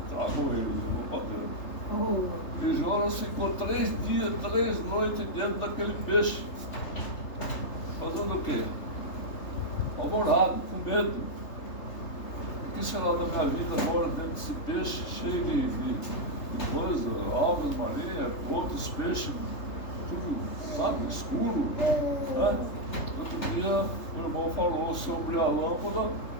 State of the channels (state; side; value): late; right; 3.3 ms